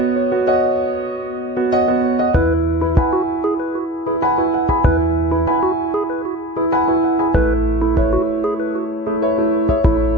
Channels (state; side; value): normal; both; correlation 0.34